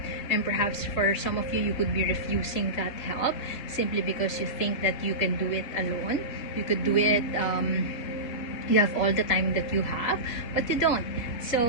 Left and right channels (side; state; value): right; late; 3.7 ms